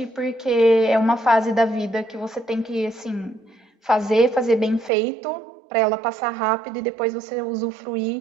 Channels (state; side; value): drops out; left; at 4.9 s